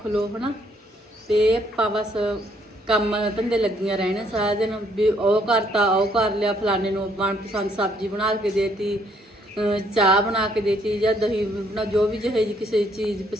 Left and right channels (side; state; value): both; normal; correlation 0.68